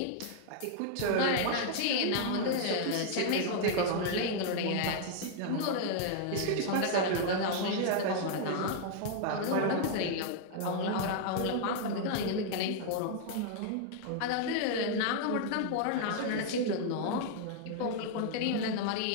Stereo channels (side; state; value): both; different; correlation 0.00